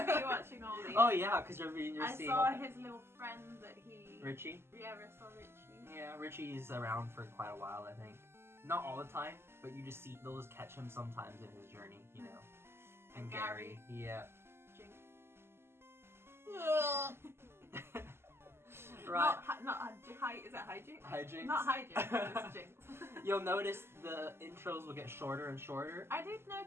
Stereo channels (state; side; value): late; left; 0.12 ms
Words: watching all these. Oh yeah, because you're I seeing saw his little friend that he. Richie. Yeah, I saw Richie. Yeah, Richie's around for quite a while, I think. Not all the time, but you just see, they'll just catch him sometimes in his journey, you know. And Gary, yeah. Jinx. Right. Not is it hijinks? Hijinks. Not hijinks, it's jinx. You'll notice the intros will get shorter and shorter. I did